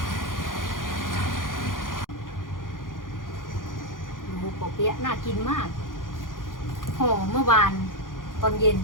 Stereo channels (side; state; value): right; late; 0.90 ms